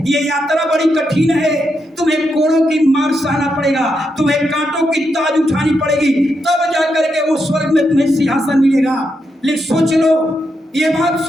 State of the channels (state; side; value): normal; both; correlation 0.83